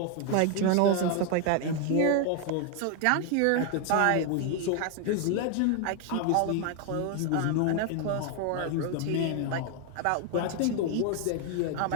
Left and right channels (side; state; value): both; different; correlation 0.01